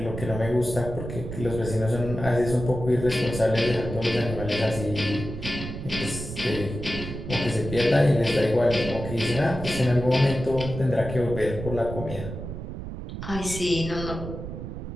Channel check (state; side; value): noise; right; rumble, 8 dB below the sound